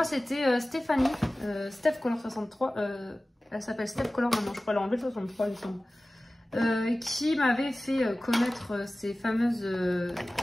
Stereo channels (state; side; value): normal; both; correlation 0.97